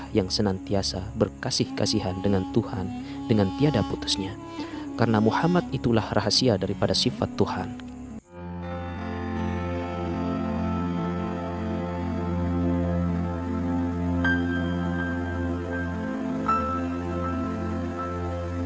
yang senantiasa berkasih-kasihan dengan Tuhan dengan tiada putusnya. Karena Muhammad itulah rahasia daripada sifat Tuhan.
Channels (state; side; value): identical; both; correlation 1.00